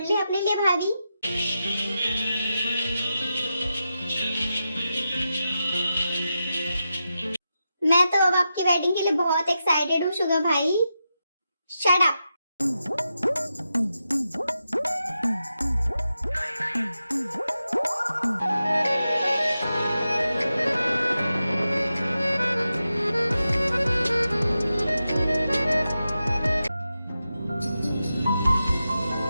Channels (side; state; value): both; inverted; correlation -0.89